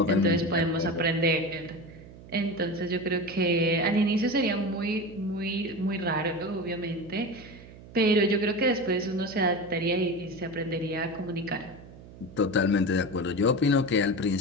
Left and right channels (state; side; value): noise; right; hum, 18 dB below the sound